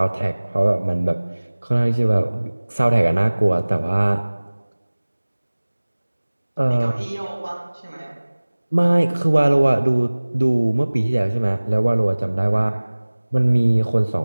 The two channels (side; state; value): both; inverted; correlation -1.00